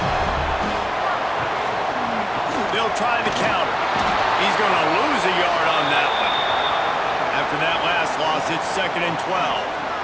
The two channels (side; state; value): both; identical; correlation 1.00